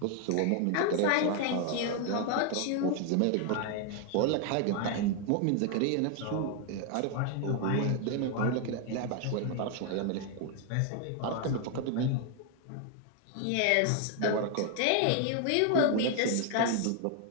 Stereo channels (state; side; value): different; both; correlation 0.00